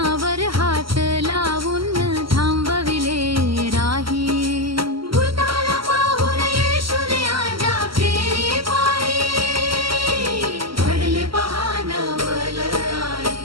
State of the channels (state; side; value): late; left; 0.75 ms